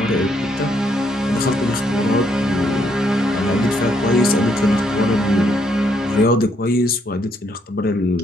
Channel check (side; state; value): both; normal; correlation 0.73